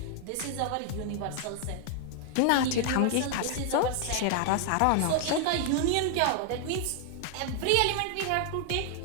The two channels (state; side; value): different; both; correlation 0.00